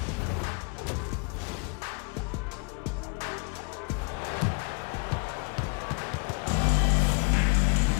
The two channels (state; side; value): quieter; right; 33.9 dB